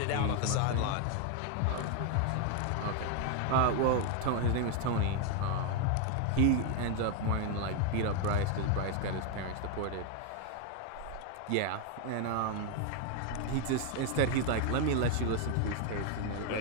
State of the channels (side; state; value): both; different; correlation 0.01